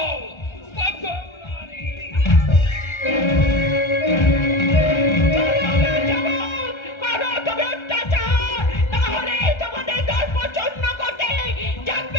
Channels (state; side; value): late; right; 1.3 ms